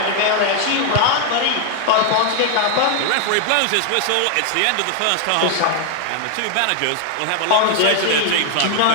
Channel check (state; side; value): different; both; correlation 0.00